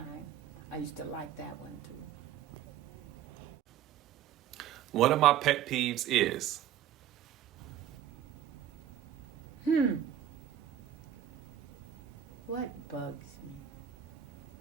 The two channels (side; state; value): left; quieter; 10.5 dB